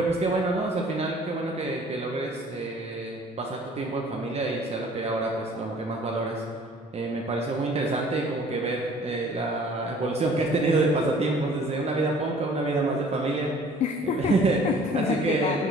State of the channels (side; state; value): both; normal; correlation 0.52